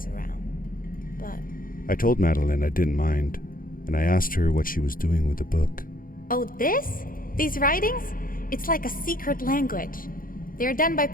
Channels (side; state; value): right; late; 0.41 ms